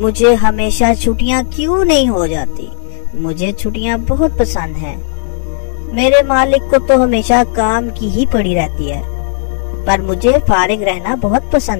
हमेशा छुट्टियाँ क्यों नहीं हो जाती? मुझे छुट्टियाँ बहुत पसंद हैं। मेरे मालिक को तो हमेशा काम की ही पड़ी रहती है, पर मुझे फारिग रहना बहुत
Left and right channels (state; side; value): silent; right; 56 dB below the other